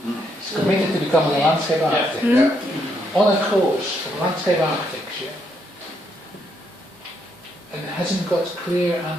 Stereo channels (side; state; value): both; normal; correlation 0.75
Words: is committed to becoming a landscape architect. Yeah. On a course of landscape architecture, and hasn't got clear